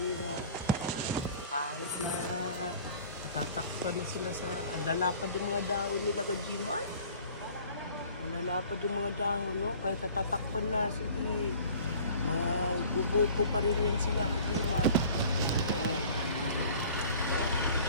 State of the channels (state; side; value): inverted; both; correlation -0.47